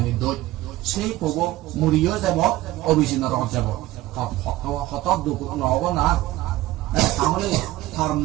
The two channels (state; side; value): quieter; left; 16.5 dB